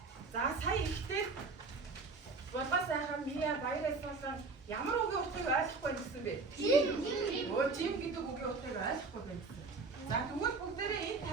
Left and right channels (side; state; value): left; quieter; 4.1 dB